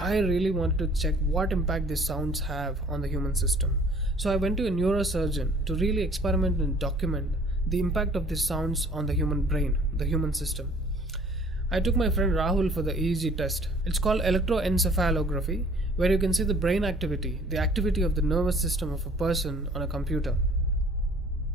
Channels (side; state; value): both; normal; correlation 0.54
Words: I really wanted to check what impact these sounds have on the human system. So I went to a neurosurgeon to really experiment and document the impact of these sounds on the human brain, the human system. I took my friend Rahul for the EEG test. It's called electroencephalography, where you can see the brain activity, the activity of the nervous system of a person on a computer.